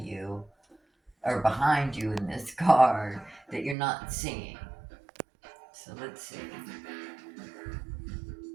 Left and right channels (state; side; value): drops out; left; at 3.8 s